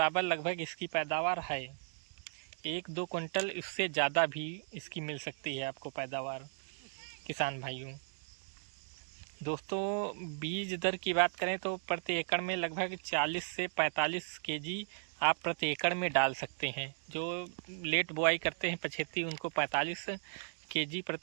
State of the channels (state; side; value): silent; left; digital silence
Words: लगभग इसकी पैदावार है। 1-2 कुंटल इससे ज़्यादा भी इसकी मिल सकती है आपको पैदावार किसान भाइयों। दोस्तों बीज दर की बात करें तो प्रति एकड़ में लगभग 40 से 45 केजी आप प्रति एकड़ में डाल सकते हैं। जो लेट बुआई करते हैं पछेती, उनको 45 केजी